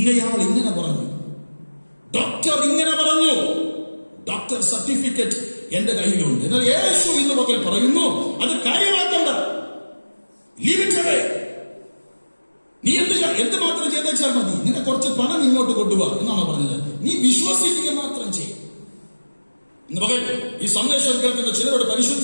ഇങ്ങനെ പറഞ്ഞു, ഡോക്ടർ ഇങ്ങനെ പറഞ്ഞു, ഡോക്ടർ സർട്ടിഫിക്കറ്റ് എന്റെ കയ്യിലുണ്ട്. എന്നാൽ യേശു ഇന്ന് പകൽ പറയുന്നു, അത് കാര്യമാക്കണ്ട, ലീവിറ്റവേ. നീ എന്ത് മാത്രം ചെയ്തേച്ചാൽ മതി, നിന്നെ കുറച്ച് പണം ഇങ്ങോട്ട് കൊണ്ടുപോവാ എന്നാണ് പറഞ്ഞത്. നീ വിശ്വസിക്കുക മാത്രം ചെയ്യും. ഇന്ന് പകൽ ഈ സന്ദേശം കേൾക്കുന്ന ചിലരോട്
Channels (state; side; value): inverted; both; correlation -1.00